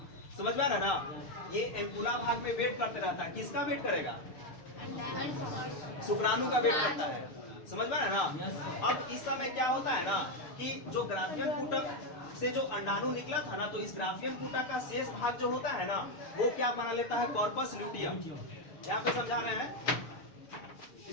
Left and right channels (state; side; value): late; right; 6.8 ms